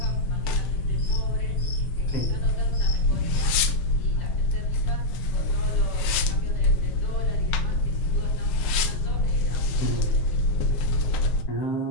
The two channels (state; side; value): late; right; 7.6 ms